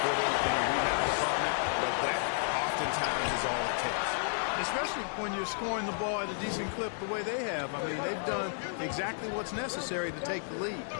for them in the rebound department, but that oftentimes is all it takes. Especially when you're scoring the ball at a decent clip the way they have. I mean, they've done exactly what's necessary to take the lead.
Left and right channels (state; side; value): silent; right; 56 dB below the other